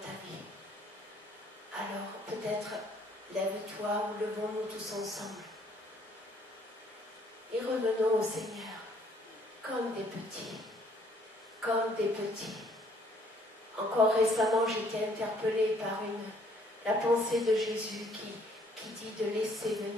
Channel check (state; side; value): normal; both; correlation 0.63